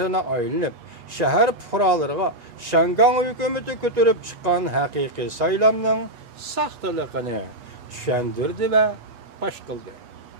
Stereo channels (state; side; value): late; left; 8.2 ms